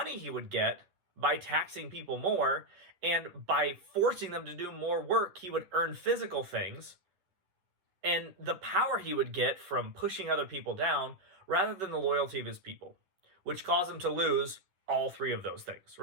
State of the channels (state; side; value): late; left; 11 ms